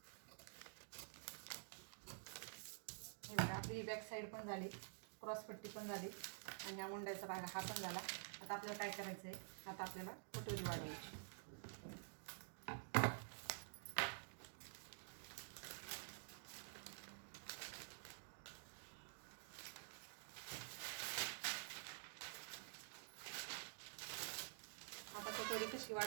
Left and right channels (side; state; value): left; silent; digital silence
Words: आपली बॅक साईड पण झाली, क्रॉसपट्टी पण झाली, आणि हा मुंड्याचा भाग हा पण झाला. आता आपल्याला काय करायचं आहे, आता आपल्याला कटोरी वाढवायची. आता कटोरी कशी